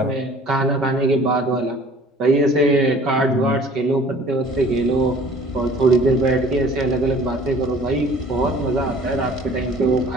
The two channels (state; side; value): normal; both; correlation 0.50